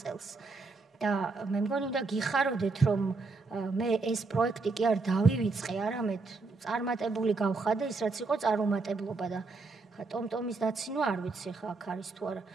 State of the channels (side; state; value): left; quieter; 3.9 dB